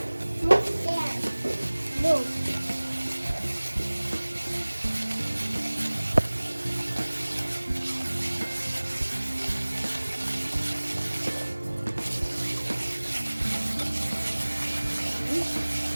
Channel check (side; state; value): both; inverted; correlation -1.00